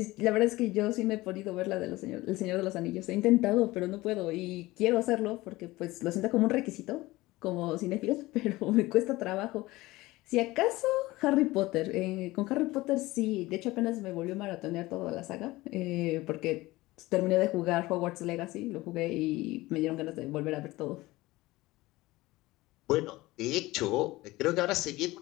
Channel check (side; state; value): right; quieter; 19.3 dB